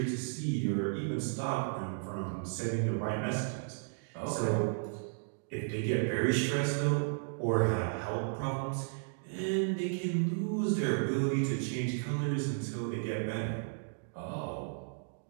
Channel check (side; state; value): left; silent; digital silence